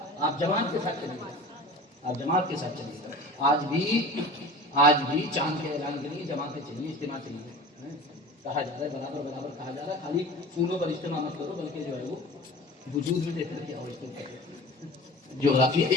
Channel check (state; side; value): normal; both; correlation 0.38